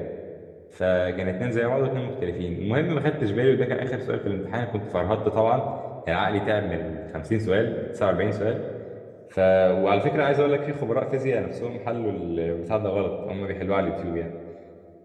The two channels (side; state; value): both; identical; correlation 1.00